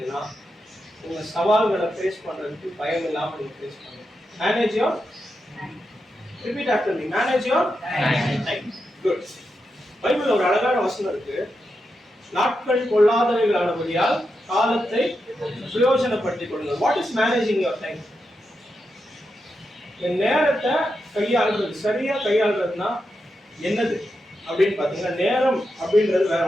உங்க சவால்களை ஃபேஸ் பண்றதுக்கு பயம் இல்லாம நீங்க ஃபேஸ் பண்ணுங்க. Manage your Repeat after me. Manage your time. Good. பைபிள்ல ஒரு அழகான வசனம் இருக்கு. நாட்கள் கொள்ளாதவைகளானபடியால் காலத்தை பிரயோஜனப்படுத்திக் கொள்ளுங்கள். What is managing your time? இந்த நேரத்தை கையாளுறது, சரியா கையாளுறதுன்னா என்னது அப்படின்னு பாத்தீங்கன்னா, நேரம் அப்படின்றது வேற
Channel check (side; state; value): both; normal; correlation 0.87